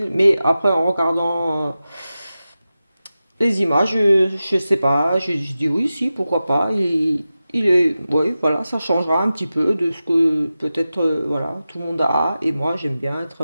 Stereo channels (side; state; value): both; inverted; correlation -0.94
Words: Mais après, en regardant les images, je sais pas, je dis oui, si, pourquoi pas. Il est, oui, voilà, ça changera un petit peu de ce que peut-être, voilà, tout le monde a. Et moi, j'aime bien être